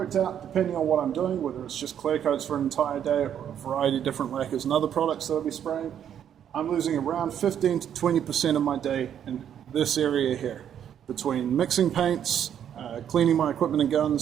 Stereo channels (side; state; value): left; quieter; 9.4 dB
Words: out, depending on what I'm doing, whether it's just clear coats for an entire day or a variety of different lacquers and other products that I'll be spraying, I'm losing around 15 to 20% of my day in this area here, between mixing paints, cleaning my equipment and